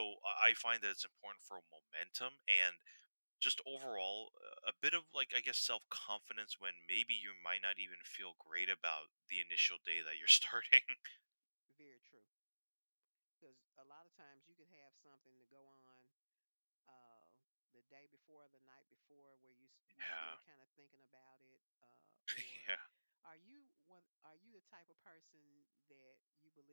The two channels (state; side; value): inverted; both; correlation -1.00